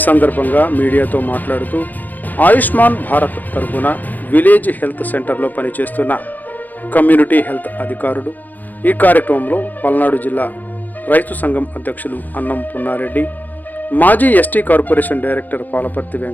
సందర్భంగా మీడియాతో మాట్లాడుతూ ఆయుష్మాన్ భారత్ తరఫున విలేజ్ హెల్త్ సెంటర్లో పనిచేస్తున్న కమ్యూనిటీ హెల్త్ అధికారులు ఈ కార్యక్రమంలో పల్నాడు జిల్లా రైతు సంఘం అధ్యక్షులు అన్నం పున్నారెడ్డి, మాజీ ST corporation director Palaparthi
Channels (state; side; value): late; right; 0.084 ms